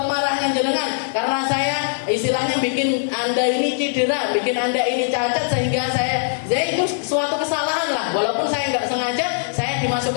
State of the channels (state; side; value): silent; right; digital silence